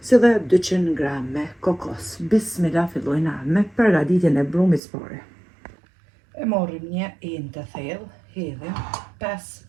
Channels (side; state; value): left; drops out; at 4.8 s